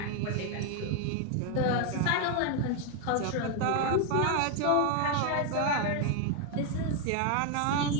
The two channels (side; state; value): both; different; correlation 0.01